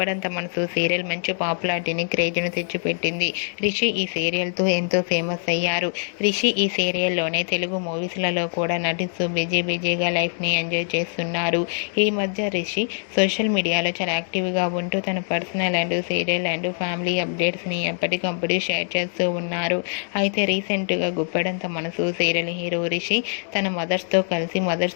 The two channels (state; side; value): silent; right; 60 dB below the other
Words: మనసు సీరియల్ మంచి పాపులారిటీని, క్రేజ్ను తెచ్చిపెట్టింది. రిషి ఈ సీరియల్తో ఎంతో ఫేమస్ అయ్యారు. రిషి ఈ సీరియల్లోనే తెలుగు మూవీస్లలో కూడా నటిస్తూ బిజీగా లైఫ్ని ఎంజాయ్ చేస్తున్నారు. ఈ మధ్య రిషి సోషల్ మీడియాలో చాలా యాక్టివ్గా ఉంటూ తన personal and serial and family అప్డేట్స్ని ఎప్పటికప్పుడు షేర్ చేస్తూ ఉన్నారు. అయితే రీసెంట్గా గుప్పెడంత మనసు సీరియల్ హీరో రిషి తన మదర్స్తో కలిసి